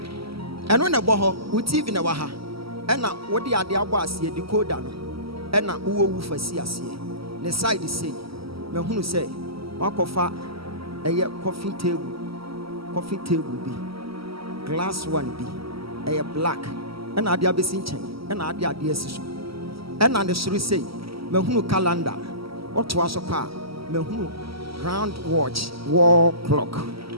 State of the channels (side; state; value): left; late; 0.75 ms